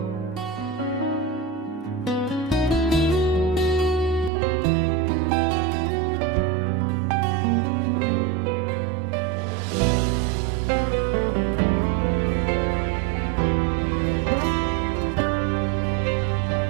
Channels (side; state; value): left; drops out; at 4.3 s